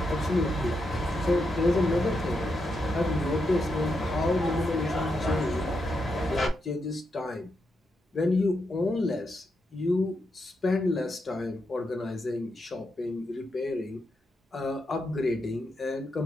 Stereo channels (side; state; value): both; normal; correlation 0.84